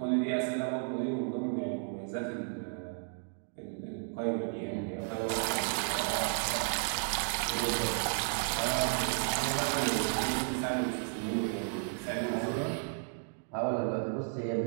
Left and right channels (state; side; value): silent; left; 56 dB below the other